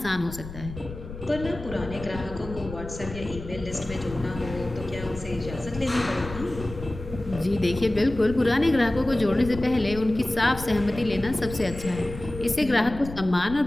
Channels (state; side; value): noise; left; rumble, 12 dB below the sound